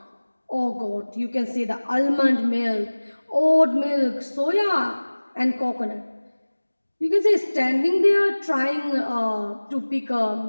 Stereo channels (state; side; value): inverted; both; correlation -1.00